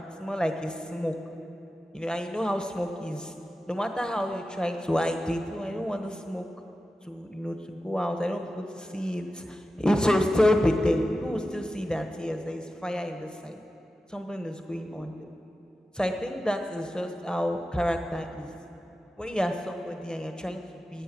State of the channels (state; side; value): normal; both; correlation 0.92